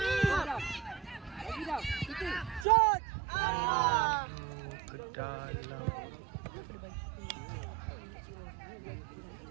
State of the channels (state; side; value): drops out; left; at 2.7 s